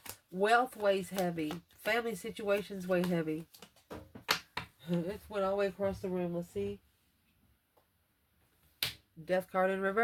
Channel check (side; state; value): both; identical; correlation 1.00